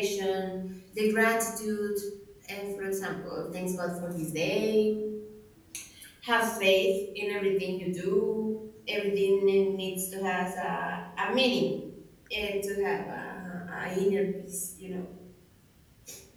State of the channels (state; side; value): identical; both; correlation 1.00